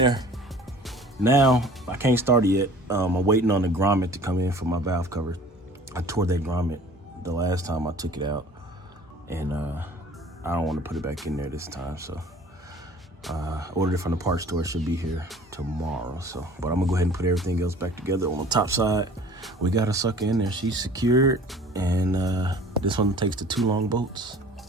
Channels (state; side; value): normal; both; correlation 0.48